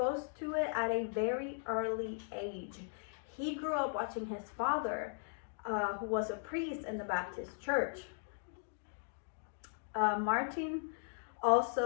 to it at a very early age. He grew up watching his father, who was a priest in the Baptist church. Martin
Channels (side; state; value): right; silent; digital silence